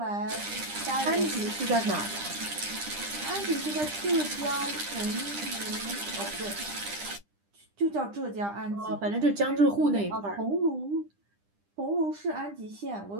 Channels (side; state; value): left; late; 10 ms